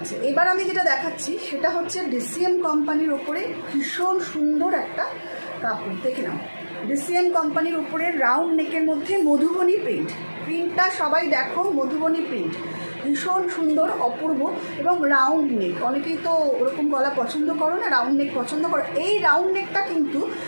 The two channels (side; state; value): both; inverted; correlation -1.00